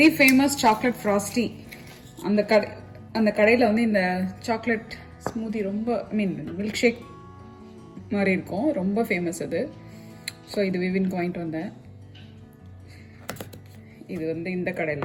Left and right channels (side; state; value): both; identical; correlation 1.00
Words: ஃபேமஸ் சாக்லேட் ஃப்ராஸ்டி. அந்த கடையில் வந்து இந்த சாக்லேட் ஸ்மூதி ரொம்ப மில்க் ஷேக் மாதிரி இருக்கும், ரொம்ப ஃபேமஸ் அது. ஸோ இது விவின் வாங்கிட்டு வந்தேன். இது வந்து இந்த